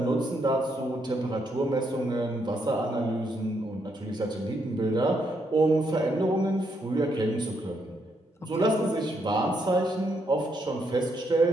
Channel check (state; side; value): normal; both; correlation 0.76